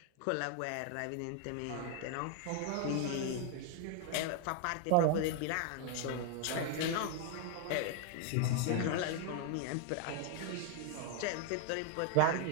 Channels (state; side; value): different; both; correlation 0.00